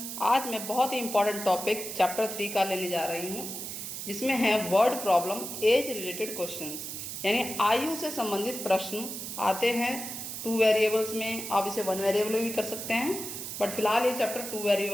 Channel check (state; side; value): noise; right; hiss, 7 dB below the sound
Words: आज मैं बहुत ही इम्पोर्टेंट टॉपिक चैप्टर 3 का लेने जा रही हूँ, जिसमें है word problem age related questions, यानी आयु से संबंधित प्रश्न आते हैं 2 वेरिएबल्स में। आप इसे 1 वेरिएबल में भी कर सकते हैं, बट फिलहाल ये चैप्टर 2